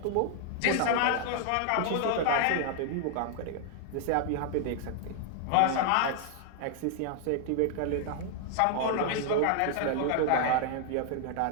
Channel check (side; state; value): both; different; correlation 0.00